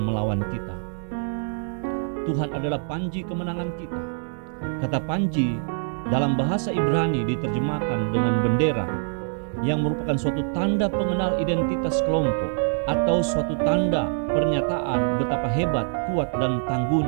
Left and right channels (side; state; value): left; silent; digital silence